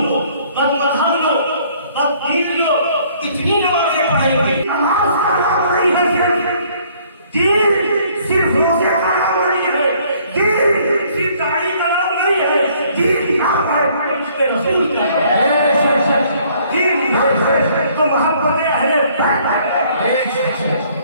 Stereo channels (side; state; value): both; inverted; correlation -0.61